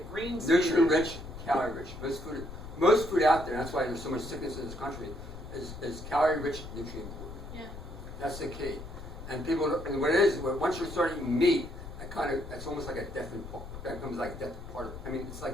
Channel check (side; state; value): left; noise; rumble, 12 dB below the sound